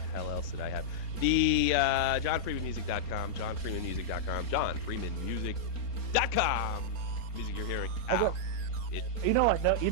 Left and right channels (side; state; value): right; late; 4.3 ms